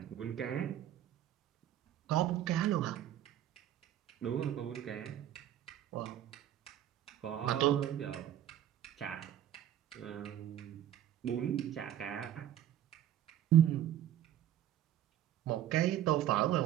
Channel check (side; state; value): left; quieter; 11.5 dB